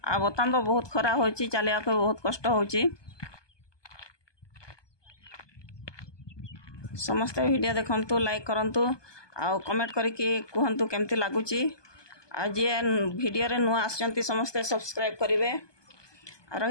आ बर्तमान तो बहुत खरा हो चलिया को बहुत कष्ट हो समस्ते वीडियो देखंतु लाइक करंतु आ कमेंट करके कहंतु केमती लागुची आ जे वीडियो रे नुआ आसचंती समस्ते सब्सक्राइब करिवे आ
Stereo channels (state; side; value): late; right; 1.2 ms